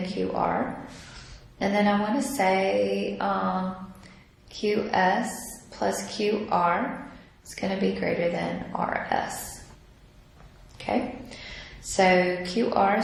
QR. And then I want to say QS plus QR is going to be greater than RS. Okay, so QR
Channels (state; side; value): identical; both; correlation 1.00